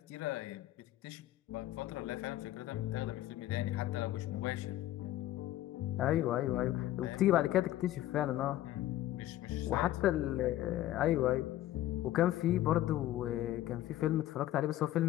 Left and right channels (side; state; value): right; quieter; 14.1 dB